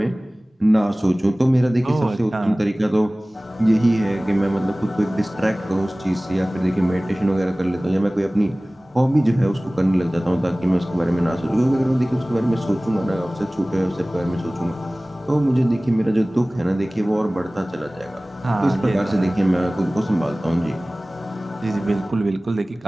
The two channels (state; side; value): normal; both; correlation 0.98